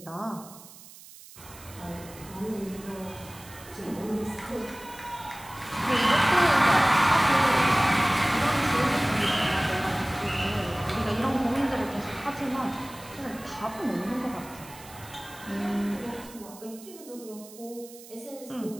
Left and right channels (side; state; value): right; noise; hiss, 19 dB below the sound